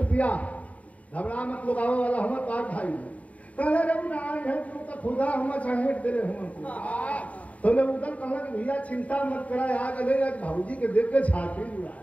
पिया घबरा मत लोग आवे वाला हम पार भाई कहे रे ना है तू तो खुदा हम चाहेट दे रहे हम तो ने उधर कहला कि भैया चिंता मत करा आ गए आज भाऊजी के देख के छाती जुड़ा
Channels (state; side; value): late; right; 0.068 ms